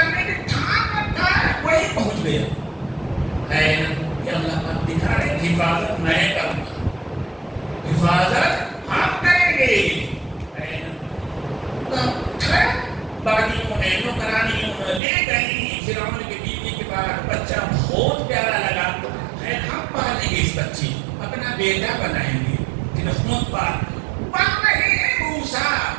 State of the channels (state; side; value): drops out; left; at 15.0 s